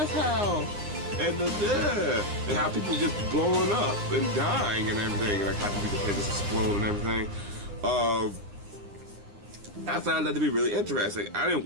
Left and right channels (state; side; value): late; left; 9.7 ms